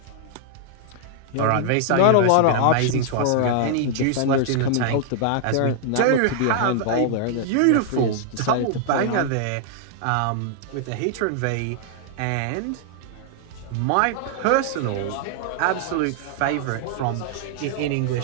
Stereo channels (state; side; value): different; both; correlation 0.00